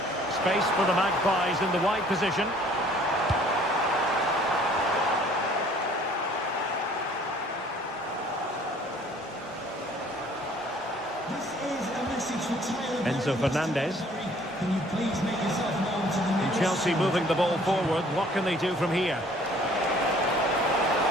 Space for the Magpies in the wide position. Enzo Fernandez. Can you please make yourself known to the And Chelsea moving the ball forward. What can they do from here?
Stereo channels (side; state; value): both; normal; correlation 0.56